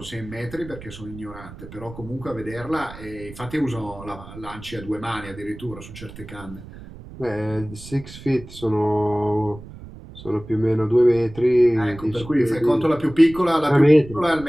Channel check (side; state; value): right; noise; rumble, 16 dB below the sound